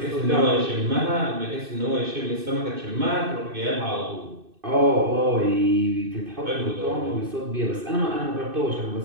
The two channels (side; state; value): left; late; 2.6 ms